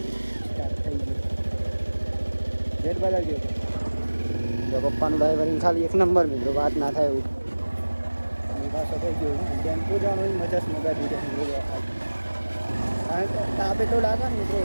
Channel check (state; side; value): inverted; both; correlation -1.00